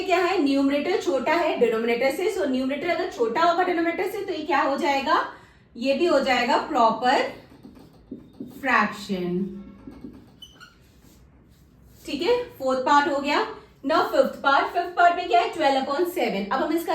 क्या है? न्यूमरेटर छोटा है डिनोमिनेटर से, सो न्यूमरेटर अगर छोटा होगा डिनोमिनेटर से तो ये क्या हो जाएगा? ये भी हो जाएगा प्रॉपर फ्रैक्शन. ठीक है, फोर्थ पार्ट हो गया. नाउ फिफ्थ पार्ट में क्या है? 12/7. अब हम इसका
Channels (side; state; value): both; identical; correlation 1.00